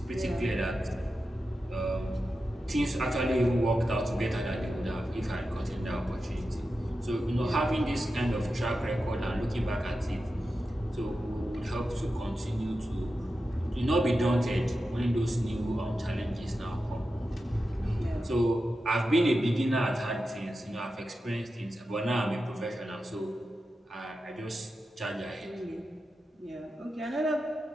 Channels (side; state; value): both; normal; correlation 0.91